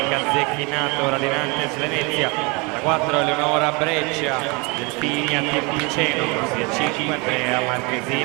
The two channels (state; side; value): quieter; left; 28.9 dB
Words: Zecchinato, Radinantes Venezia, alla 4 Eleonora Breccia, Delfini a Team Piceno, corsia 5 Andrea